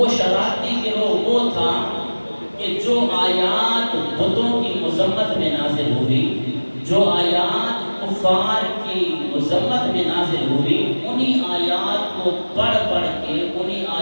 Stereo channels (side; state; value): both; inverted; correlation -1.00